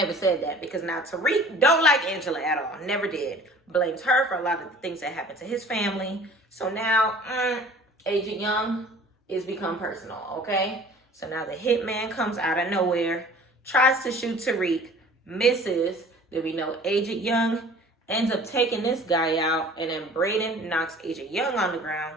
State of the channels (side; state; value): both; normal; correlation 0.48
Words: said that because now Tariq don't like Angela at all. Never did. Blames her for a lot of the things that happened to his family. So now Agent Young is become personal, okay? So now the hitman comes out of nowhere, tries to shoot Tariq, misses. Then we know Agent Young ends up taking this guy out, and then Brayden knocks Agent Young on the ground,